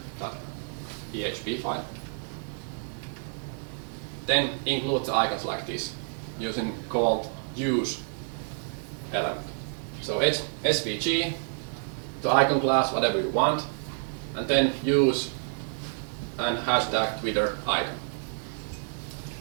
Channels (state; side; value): silent; left; 59 dB below the other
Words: file. Then include the icons like this using called use element. So it's SVG, the icon class, whatever you want, and then use and hashtag Twitter icon.